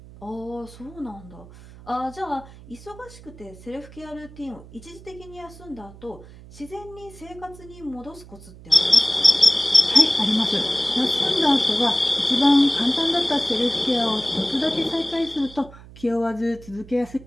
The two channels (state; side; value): noise; right; hum, 19 dB below the sound